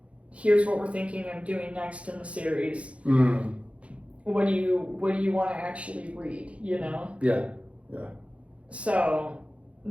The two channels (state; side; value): late; left; 0.062 ms